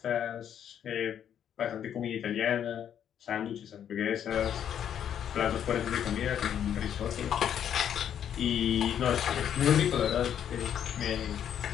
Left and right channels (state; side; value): quieter; right; 9.4 dB